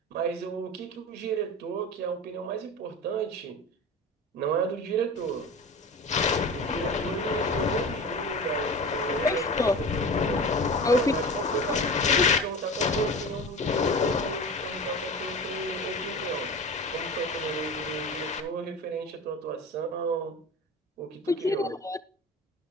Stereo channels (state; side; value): normal; both; correlation 0.33